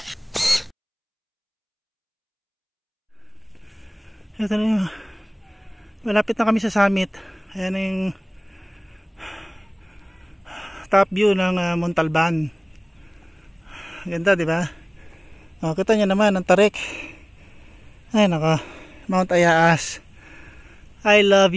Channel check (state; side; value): identical; both; correlation 1.00